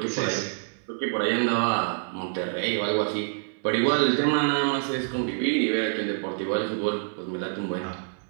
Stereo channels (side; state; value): left; silent; 60 dB below the other